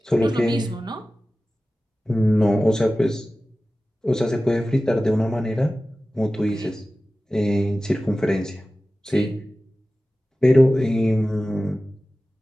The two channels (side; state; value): both; normal; correlation 0.96